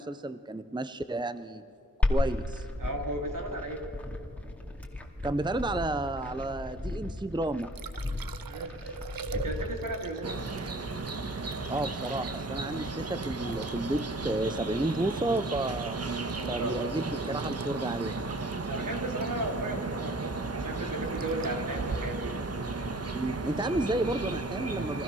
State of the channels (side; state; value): both; normal; correlation 0.53